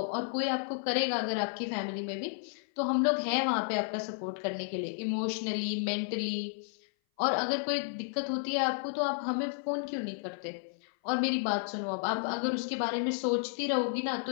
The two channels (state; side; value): silent; right; 56 dB below the other